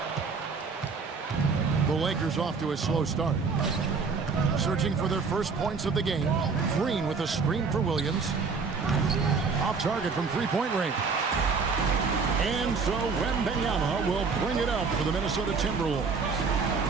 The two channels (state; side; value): quieter; left; 4.9 dB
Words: 3. The Lakers off to a slow start. Searching for their first points of the game. Green with a screen for Williams. Off target from three-point range. And so Wembanyama will bring it up for the Minnesota Timberwolves.